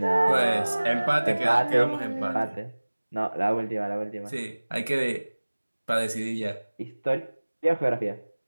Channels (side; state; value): both; inverted; correlation -1.00